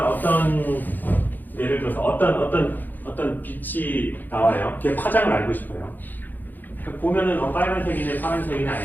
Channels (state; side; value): late; right; 0.087 ms